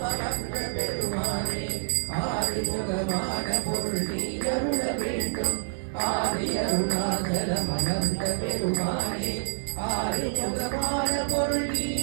அமர்ந்த பெருமானே ஆறுமுகமான பொருள் நீ அருள வேண்டும் ஆதி அருணாச்சலம் அமர்ந்த பெருமானே ஆறுமுகமான பொருள் நீ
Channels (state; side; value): silent; left; digital silence